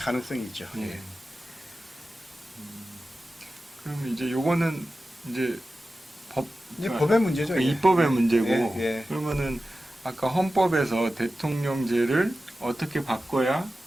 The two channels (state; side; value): normal; both; correlation 0.94